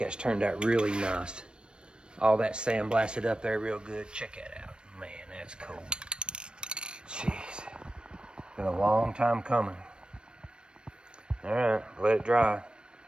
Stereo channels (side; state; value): left; late; 0.053 ms